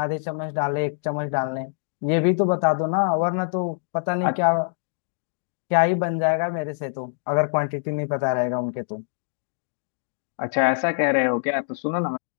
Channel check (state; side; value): silent; right; digital silence